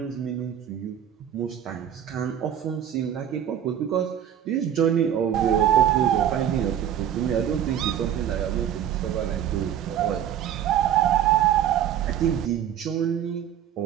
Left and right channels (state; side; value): quieter; left; 10.1 dB